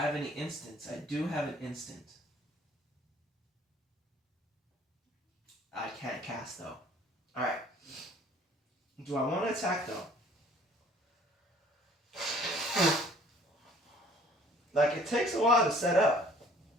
any instants? I do have an instant. I can't cast though. Alright. Do I want to attack though? Like, it takes a while to set up.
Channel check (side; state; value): both; normal; correlation 0.55